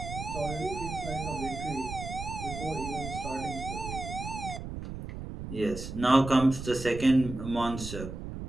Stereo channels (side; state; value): right; noise; rumble, 8 dB below the sound